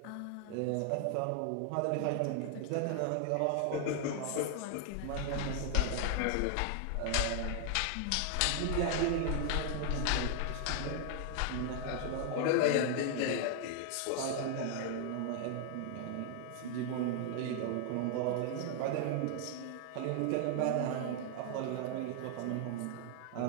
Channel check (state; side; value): different; both; correlation 0.00